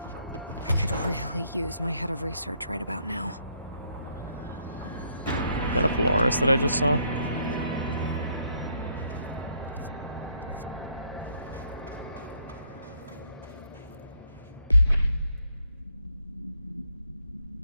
I could really use my head of research right about now. Is that a Polaris that I just saw?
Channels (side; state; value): both; inverted; correlation -0.70